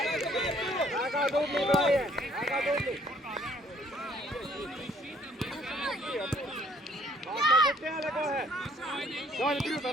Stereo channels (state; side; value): normal; both; correlation 0.61